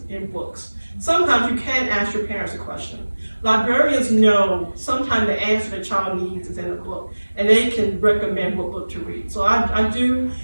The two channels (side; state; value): both; inverted; correlation -1.00